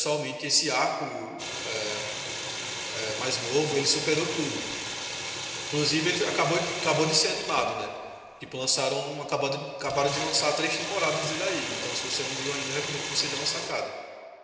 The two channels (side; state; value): both; identical; correlation 1.00